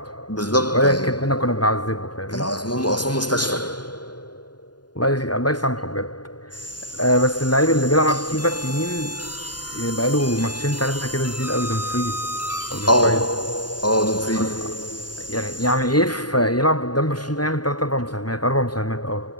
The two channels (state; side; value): late; right; 0.70 ms